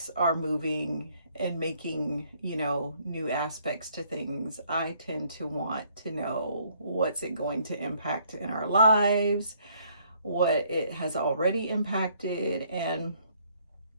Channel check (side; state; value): both; inverted; correlation -0.66